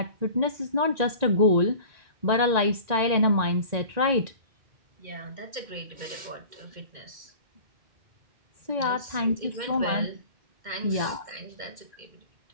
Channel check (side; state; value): left; late; 1.9 ms